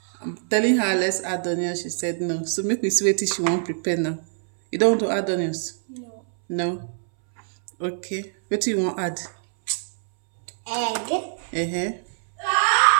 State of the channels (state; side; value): silent; left; 63 dB below the other